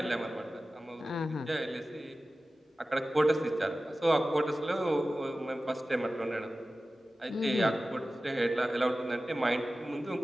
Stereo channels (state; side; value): normal; both; correlation 0.95